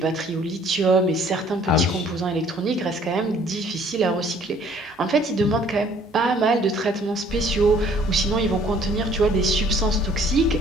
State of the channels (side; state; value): both; normal; correlation 0.58